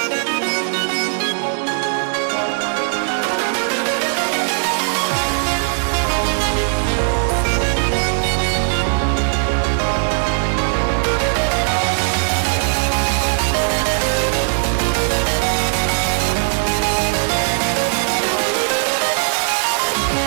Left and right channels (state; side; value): silent; left; digital silence